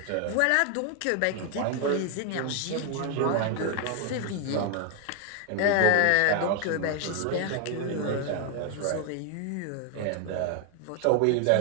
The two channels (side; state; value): both; different; correlation 0.01